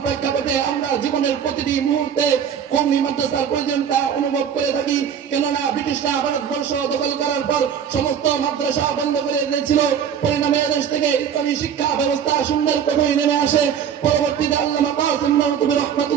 প্রেক্ষাপটে আমরা জীবনের প্রতিটি মুহূর্তে কওমি মাদ্রাসার প্রয়োজনীয়তা অনুভব করে থাকি। কেননা ব্রিটিশরা ভারতবর্ষ দখল করার পর সমস্ত মাদ্রাসা বন্ধ করে দিয়েছিল। পরিণামে দেশ থেকে ইসলামী শিক্ষা ব্যবস্থা শূন্যের কোঠায় নেমে আসে। পরবর্তীতে আল্লামা কাসিম নওয়াবী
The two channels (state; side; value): quieter; left; 8.2 dB